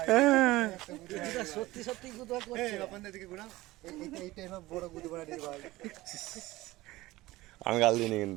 সত্যি সত্যি গুদা করছে। আপনাদের দিকে ঘোরা, এইটা এবার বড় গুদা বাড়া দিয়ে ভাই। আমি গাল দিইনি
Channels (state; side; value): quieter; left; 18.5 dB